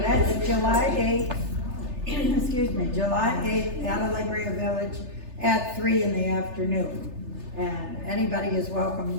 that's July 8th, excuse me, July 8th at Alegria Village at 3 in the afternoon. And anybody is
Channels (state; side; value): late; left; 3.3 ms